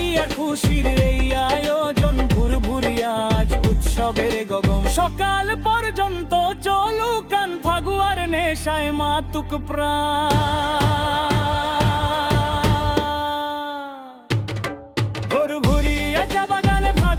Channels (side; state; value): both; identical; correlation 1.00